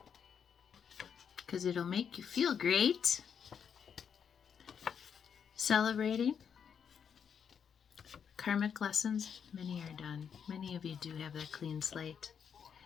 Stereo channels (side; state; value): right; quieter; 7.4 dB